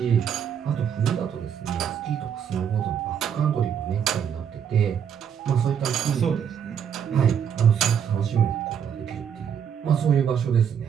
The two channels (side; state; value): left; quieter; 8.1 dB